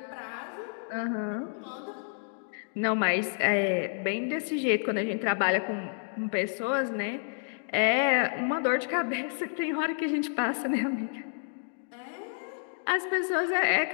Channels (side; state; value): right; silent; digital silence